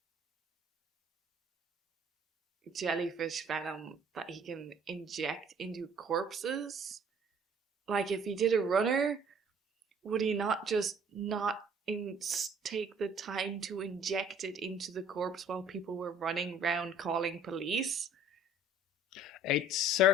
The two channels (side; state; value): both; normal; correlation 0.54